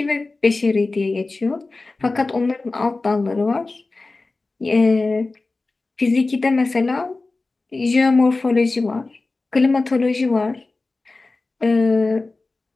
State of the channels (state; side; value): quieter; right; 3.4 dB